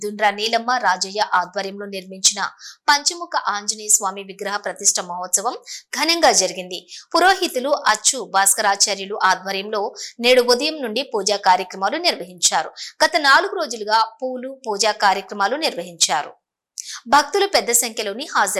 దుండ్రా నీలమ్మ రాజయ్య ఆధ్వర్యంలో నిర్మించిన పంచముఖ ఆంజనేయ స్వామి విగ్రహ ప్రతిష్ఠ మహోత్సవం ఘనంగా జరిగింది. పురోహితులు అచ్చు భాస్కరాచార్యులు ఆధ్వర్యంలో నేడు ఉదయం నుండి పూజా కార్యక్రమాలు నిర్వహించారు. గత 4 రోజులుగా పూలు పూజా కార్యక్రమాలు నిర్వహించారు. భక్తులు పెద్ద సంఖ్యలోని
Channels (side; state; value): both; identical; correlation 1.00